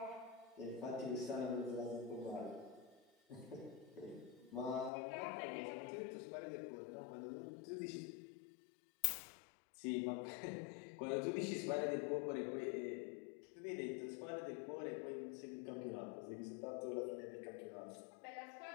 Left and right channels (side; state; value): right; drops out; at 4.9 s